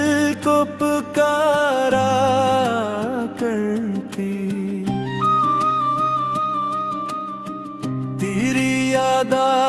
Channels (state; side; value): identical; both; correlation 1.00